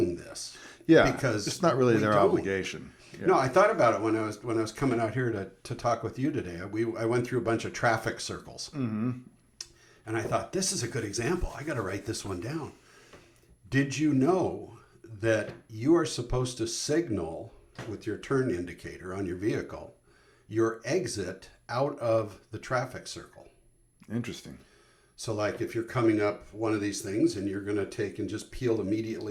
this. Yeah. Because it's not really their obligation. Yeah. No, I thought about it when I was coming out here to talk with you today. I went through a bunch of traffic circles. And I thought, this is a good example. I got to write this one down. Did you know that you are supposed to signal with your turn indicator on your vehicle your exit out of the traffic circle? Interesting. So like if you're coming up one of these things and you're going to take and just peel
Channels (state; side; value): identical; both; correlation 1.00